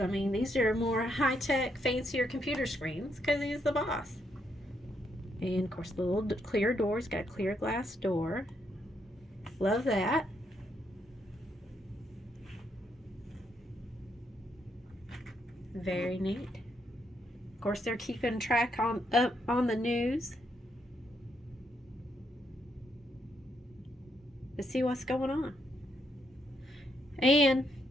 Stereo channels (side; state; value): both; normal; correlation 0.77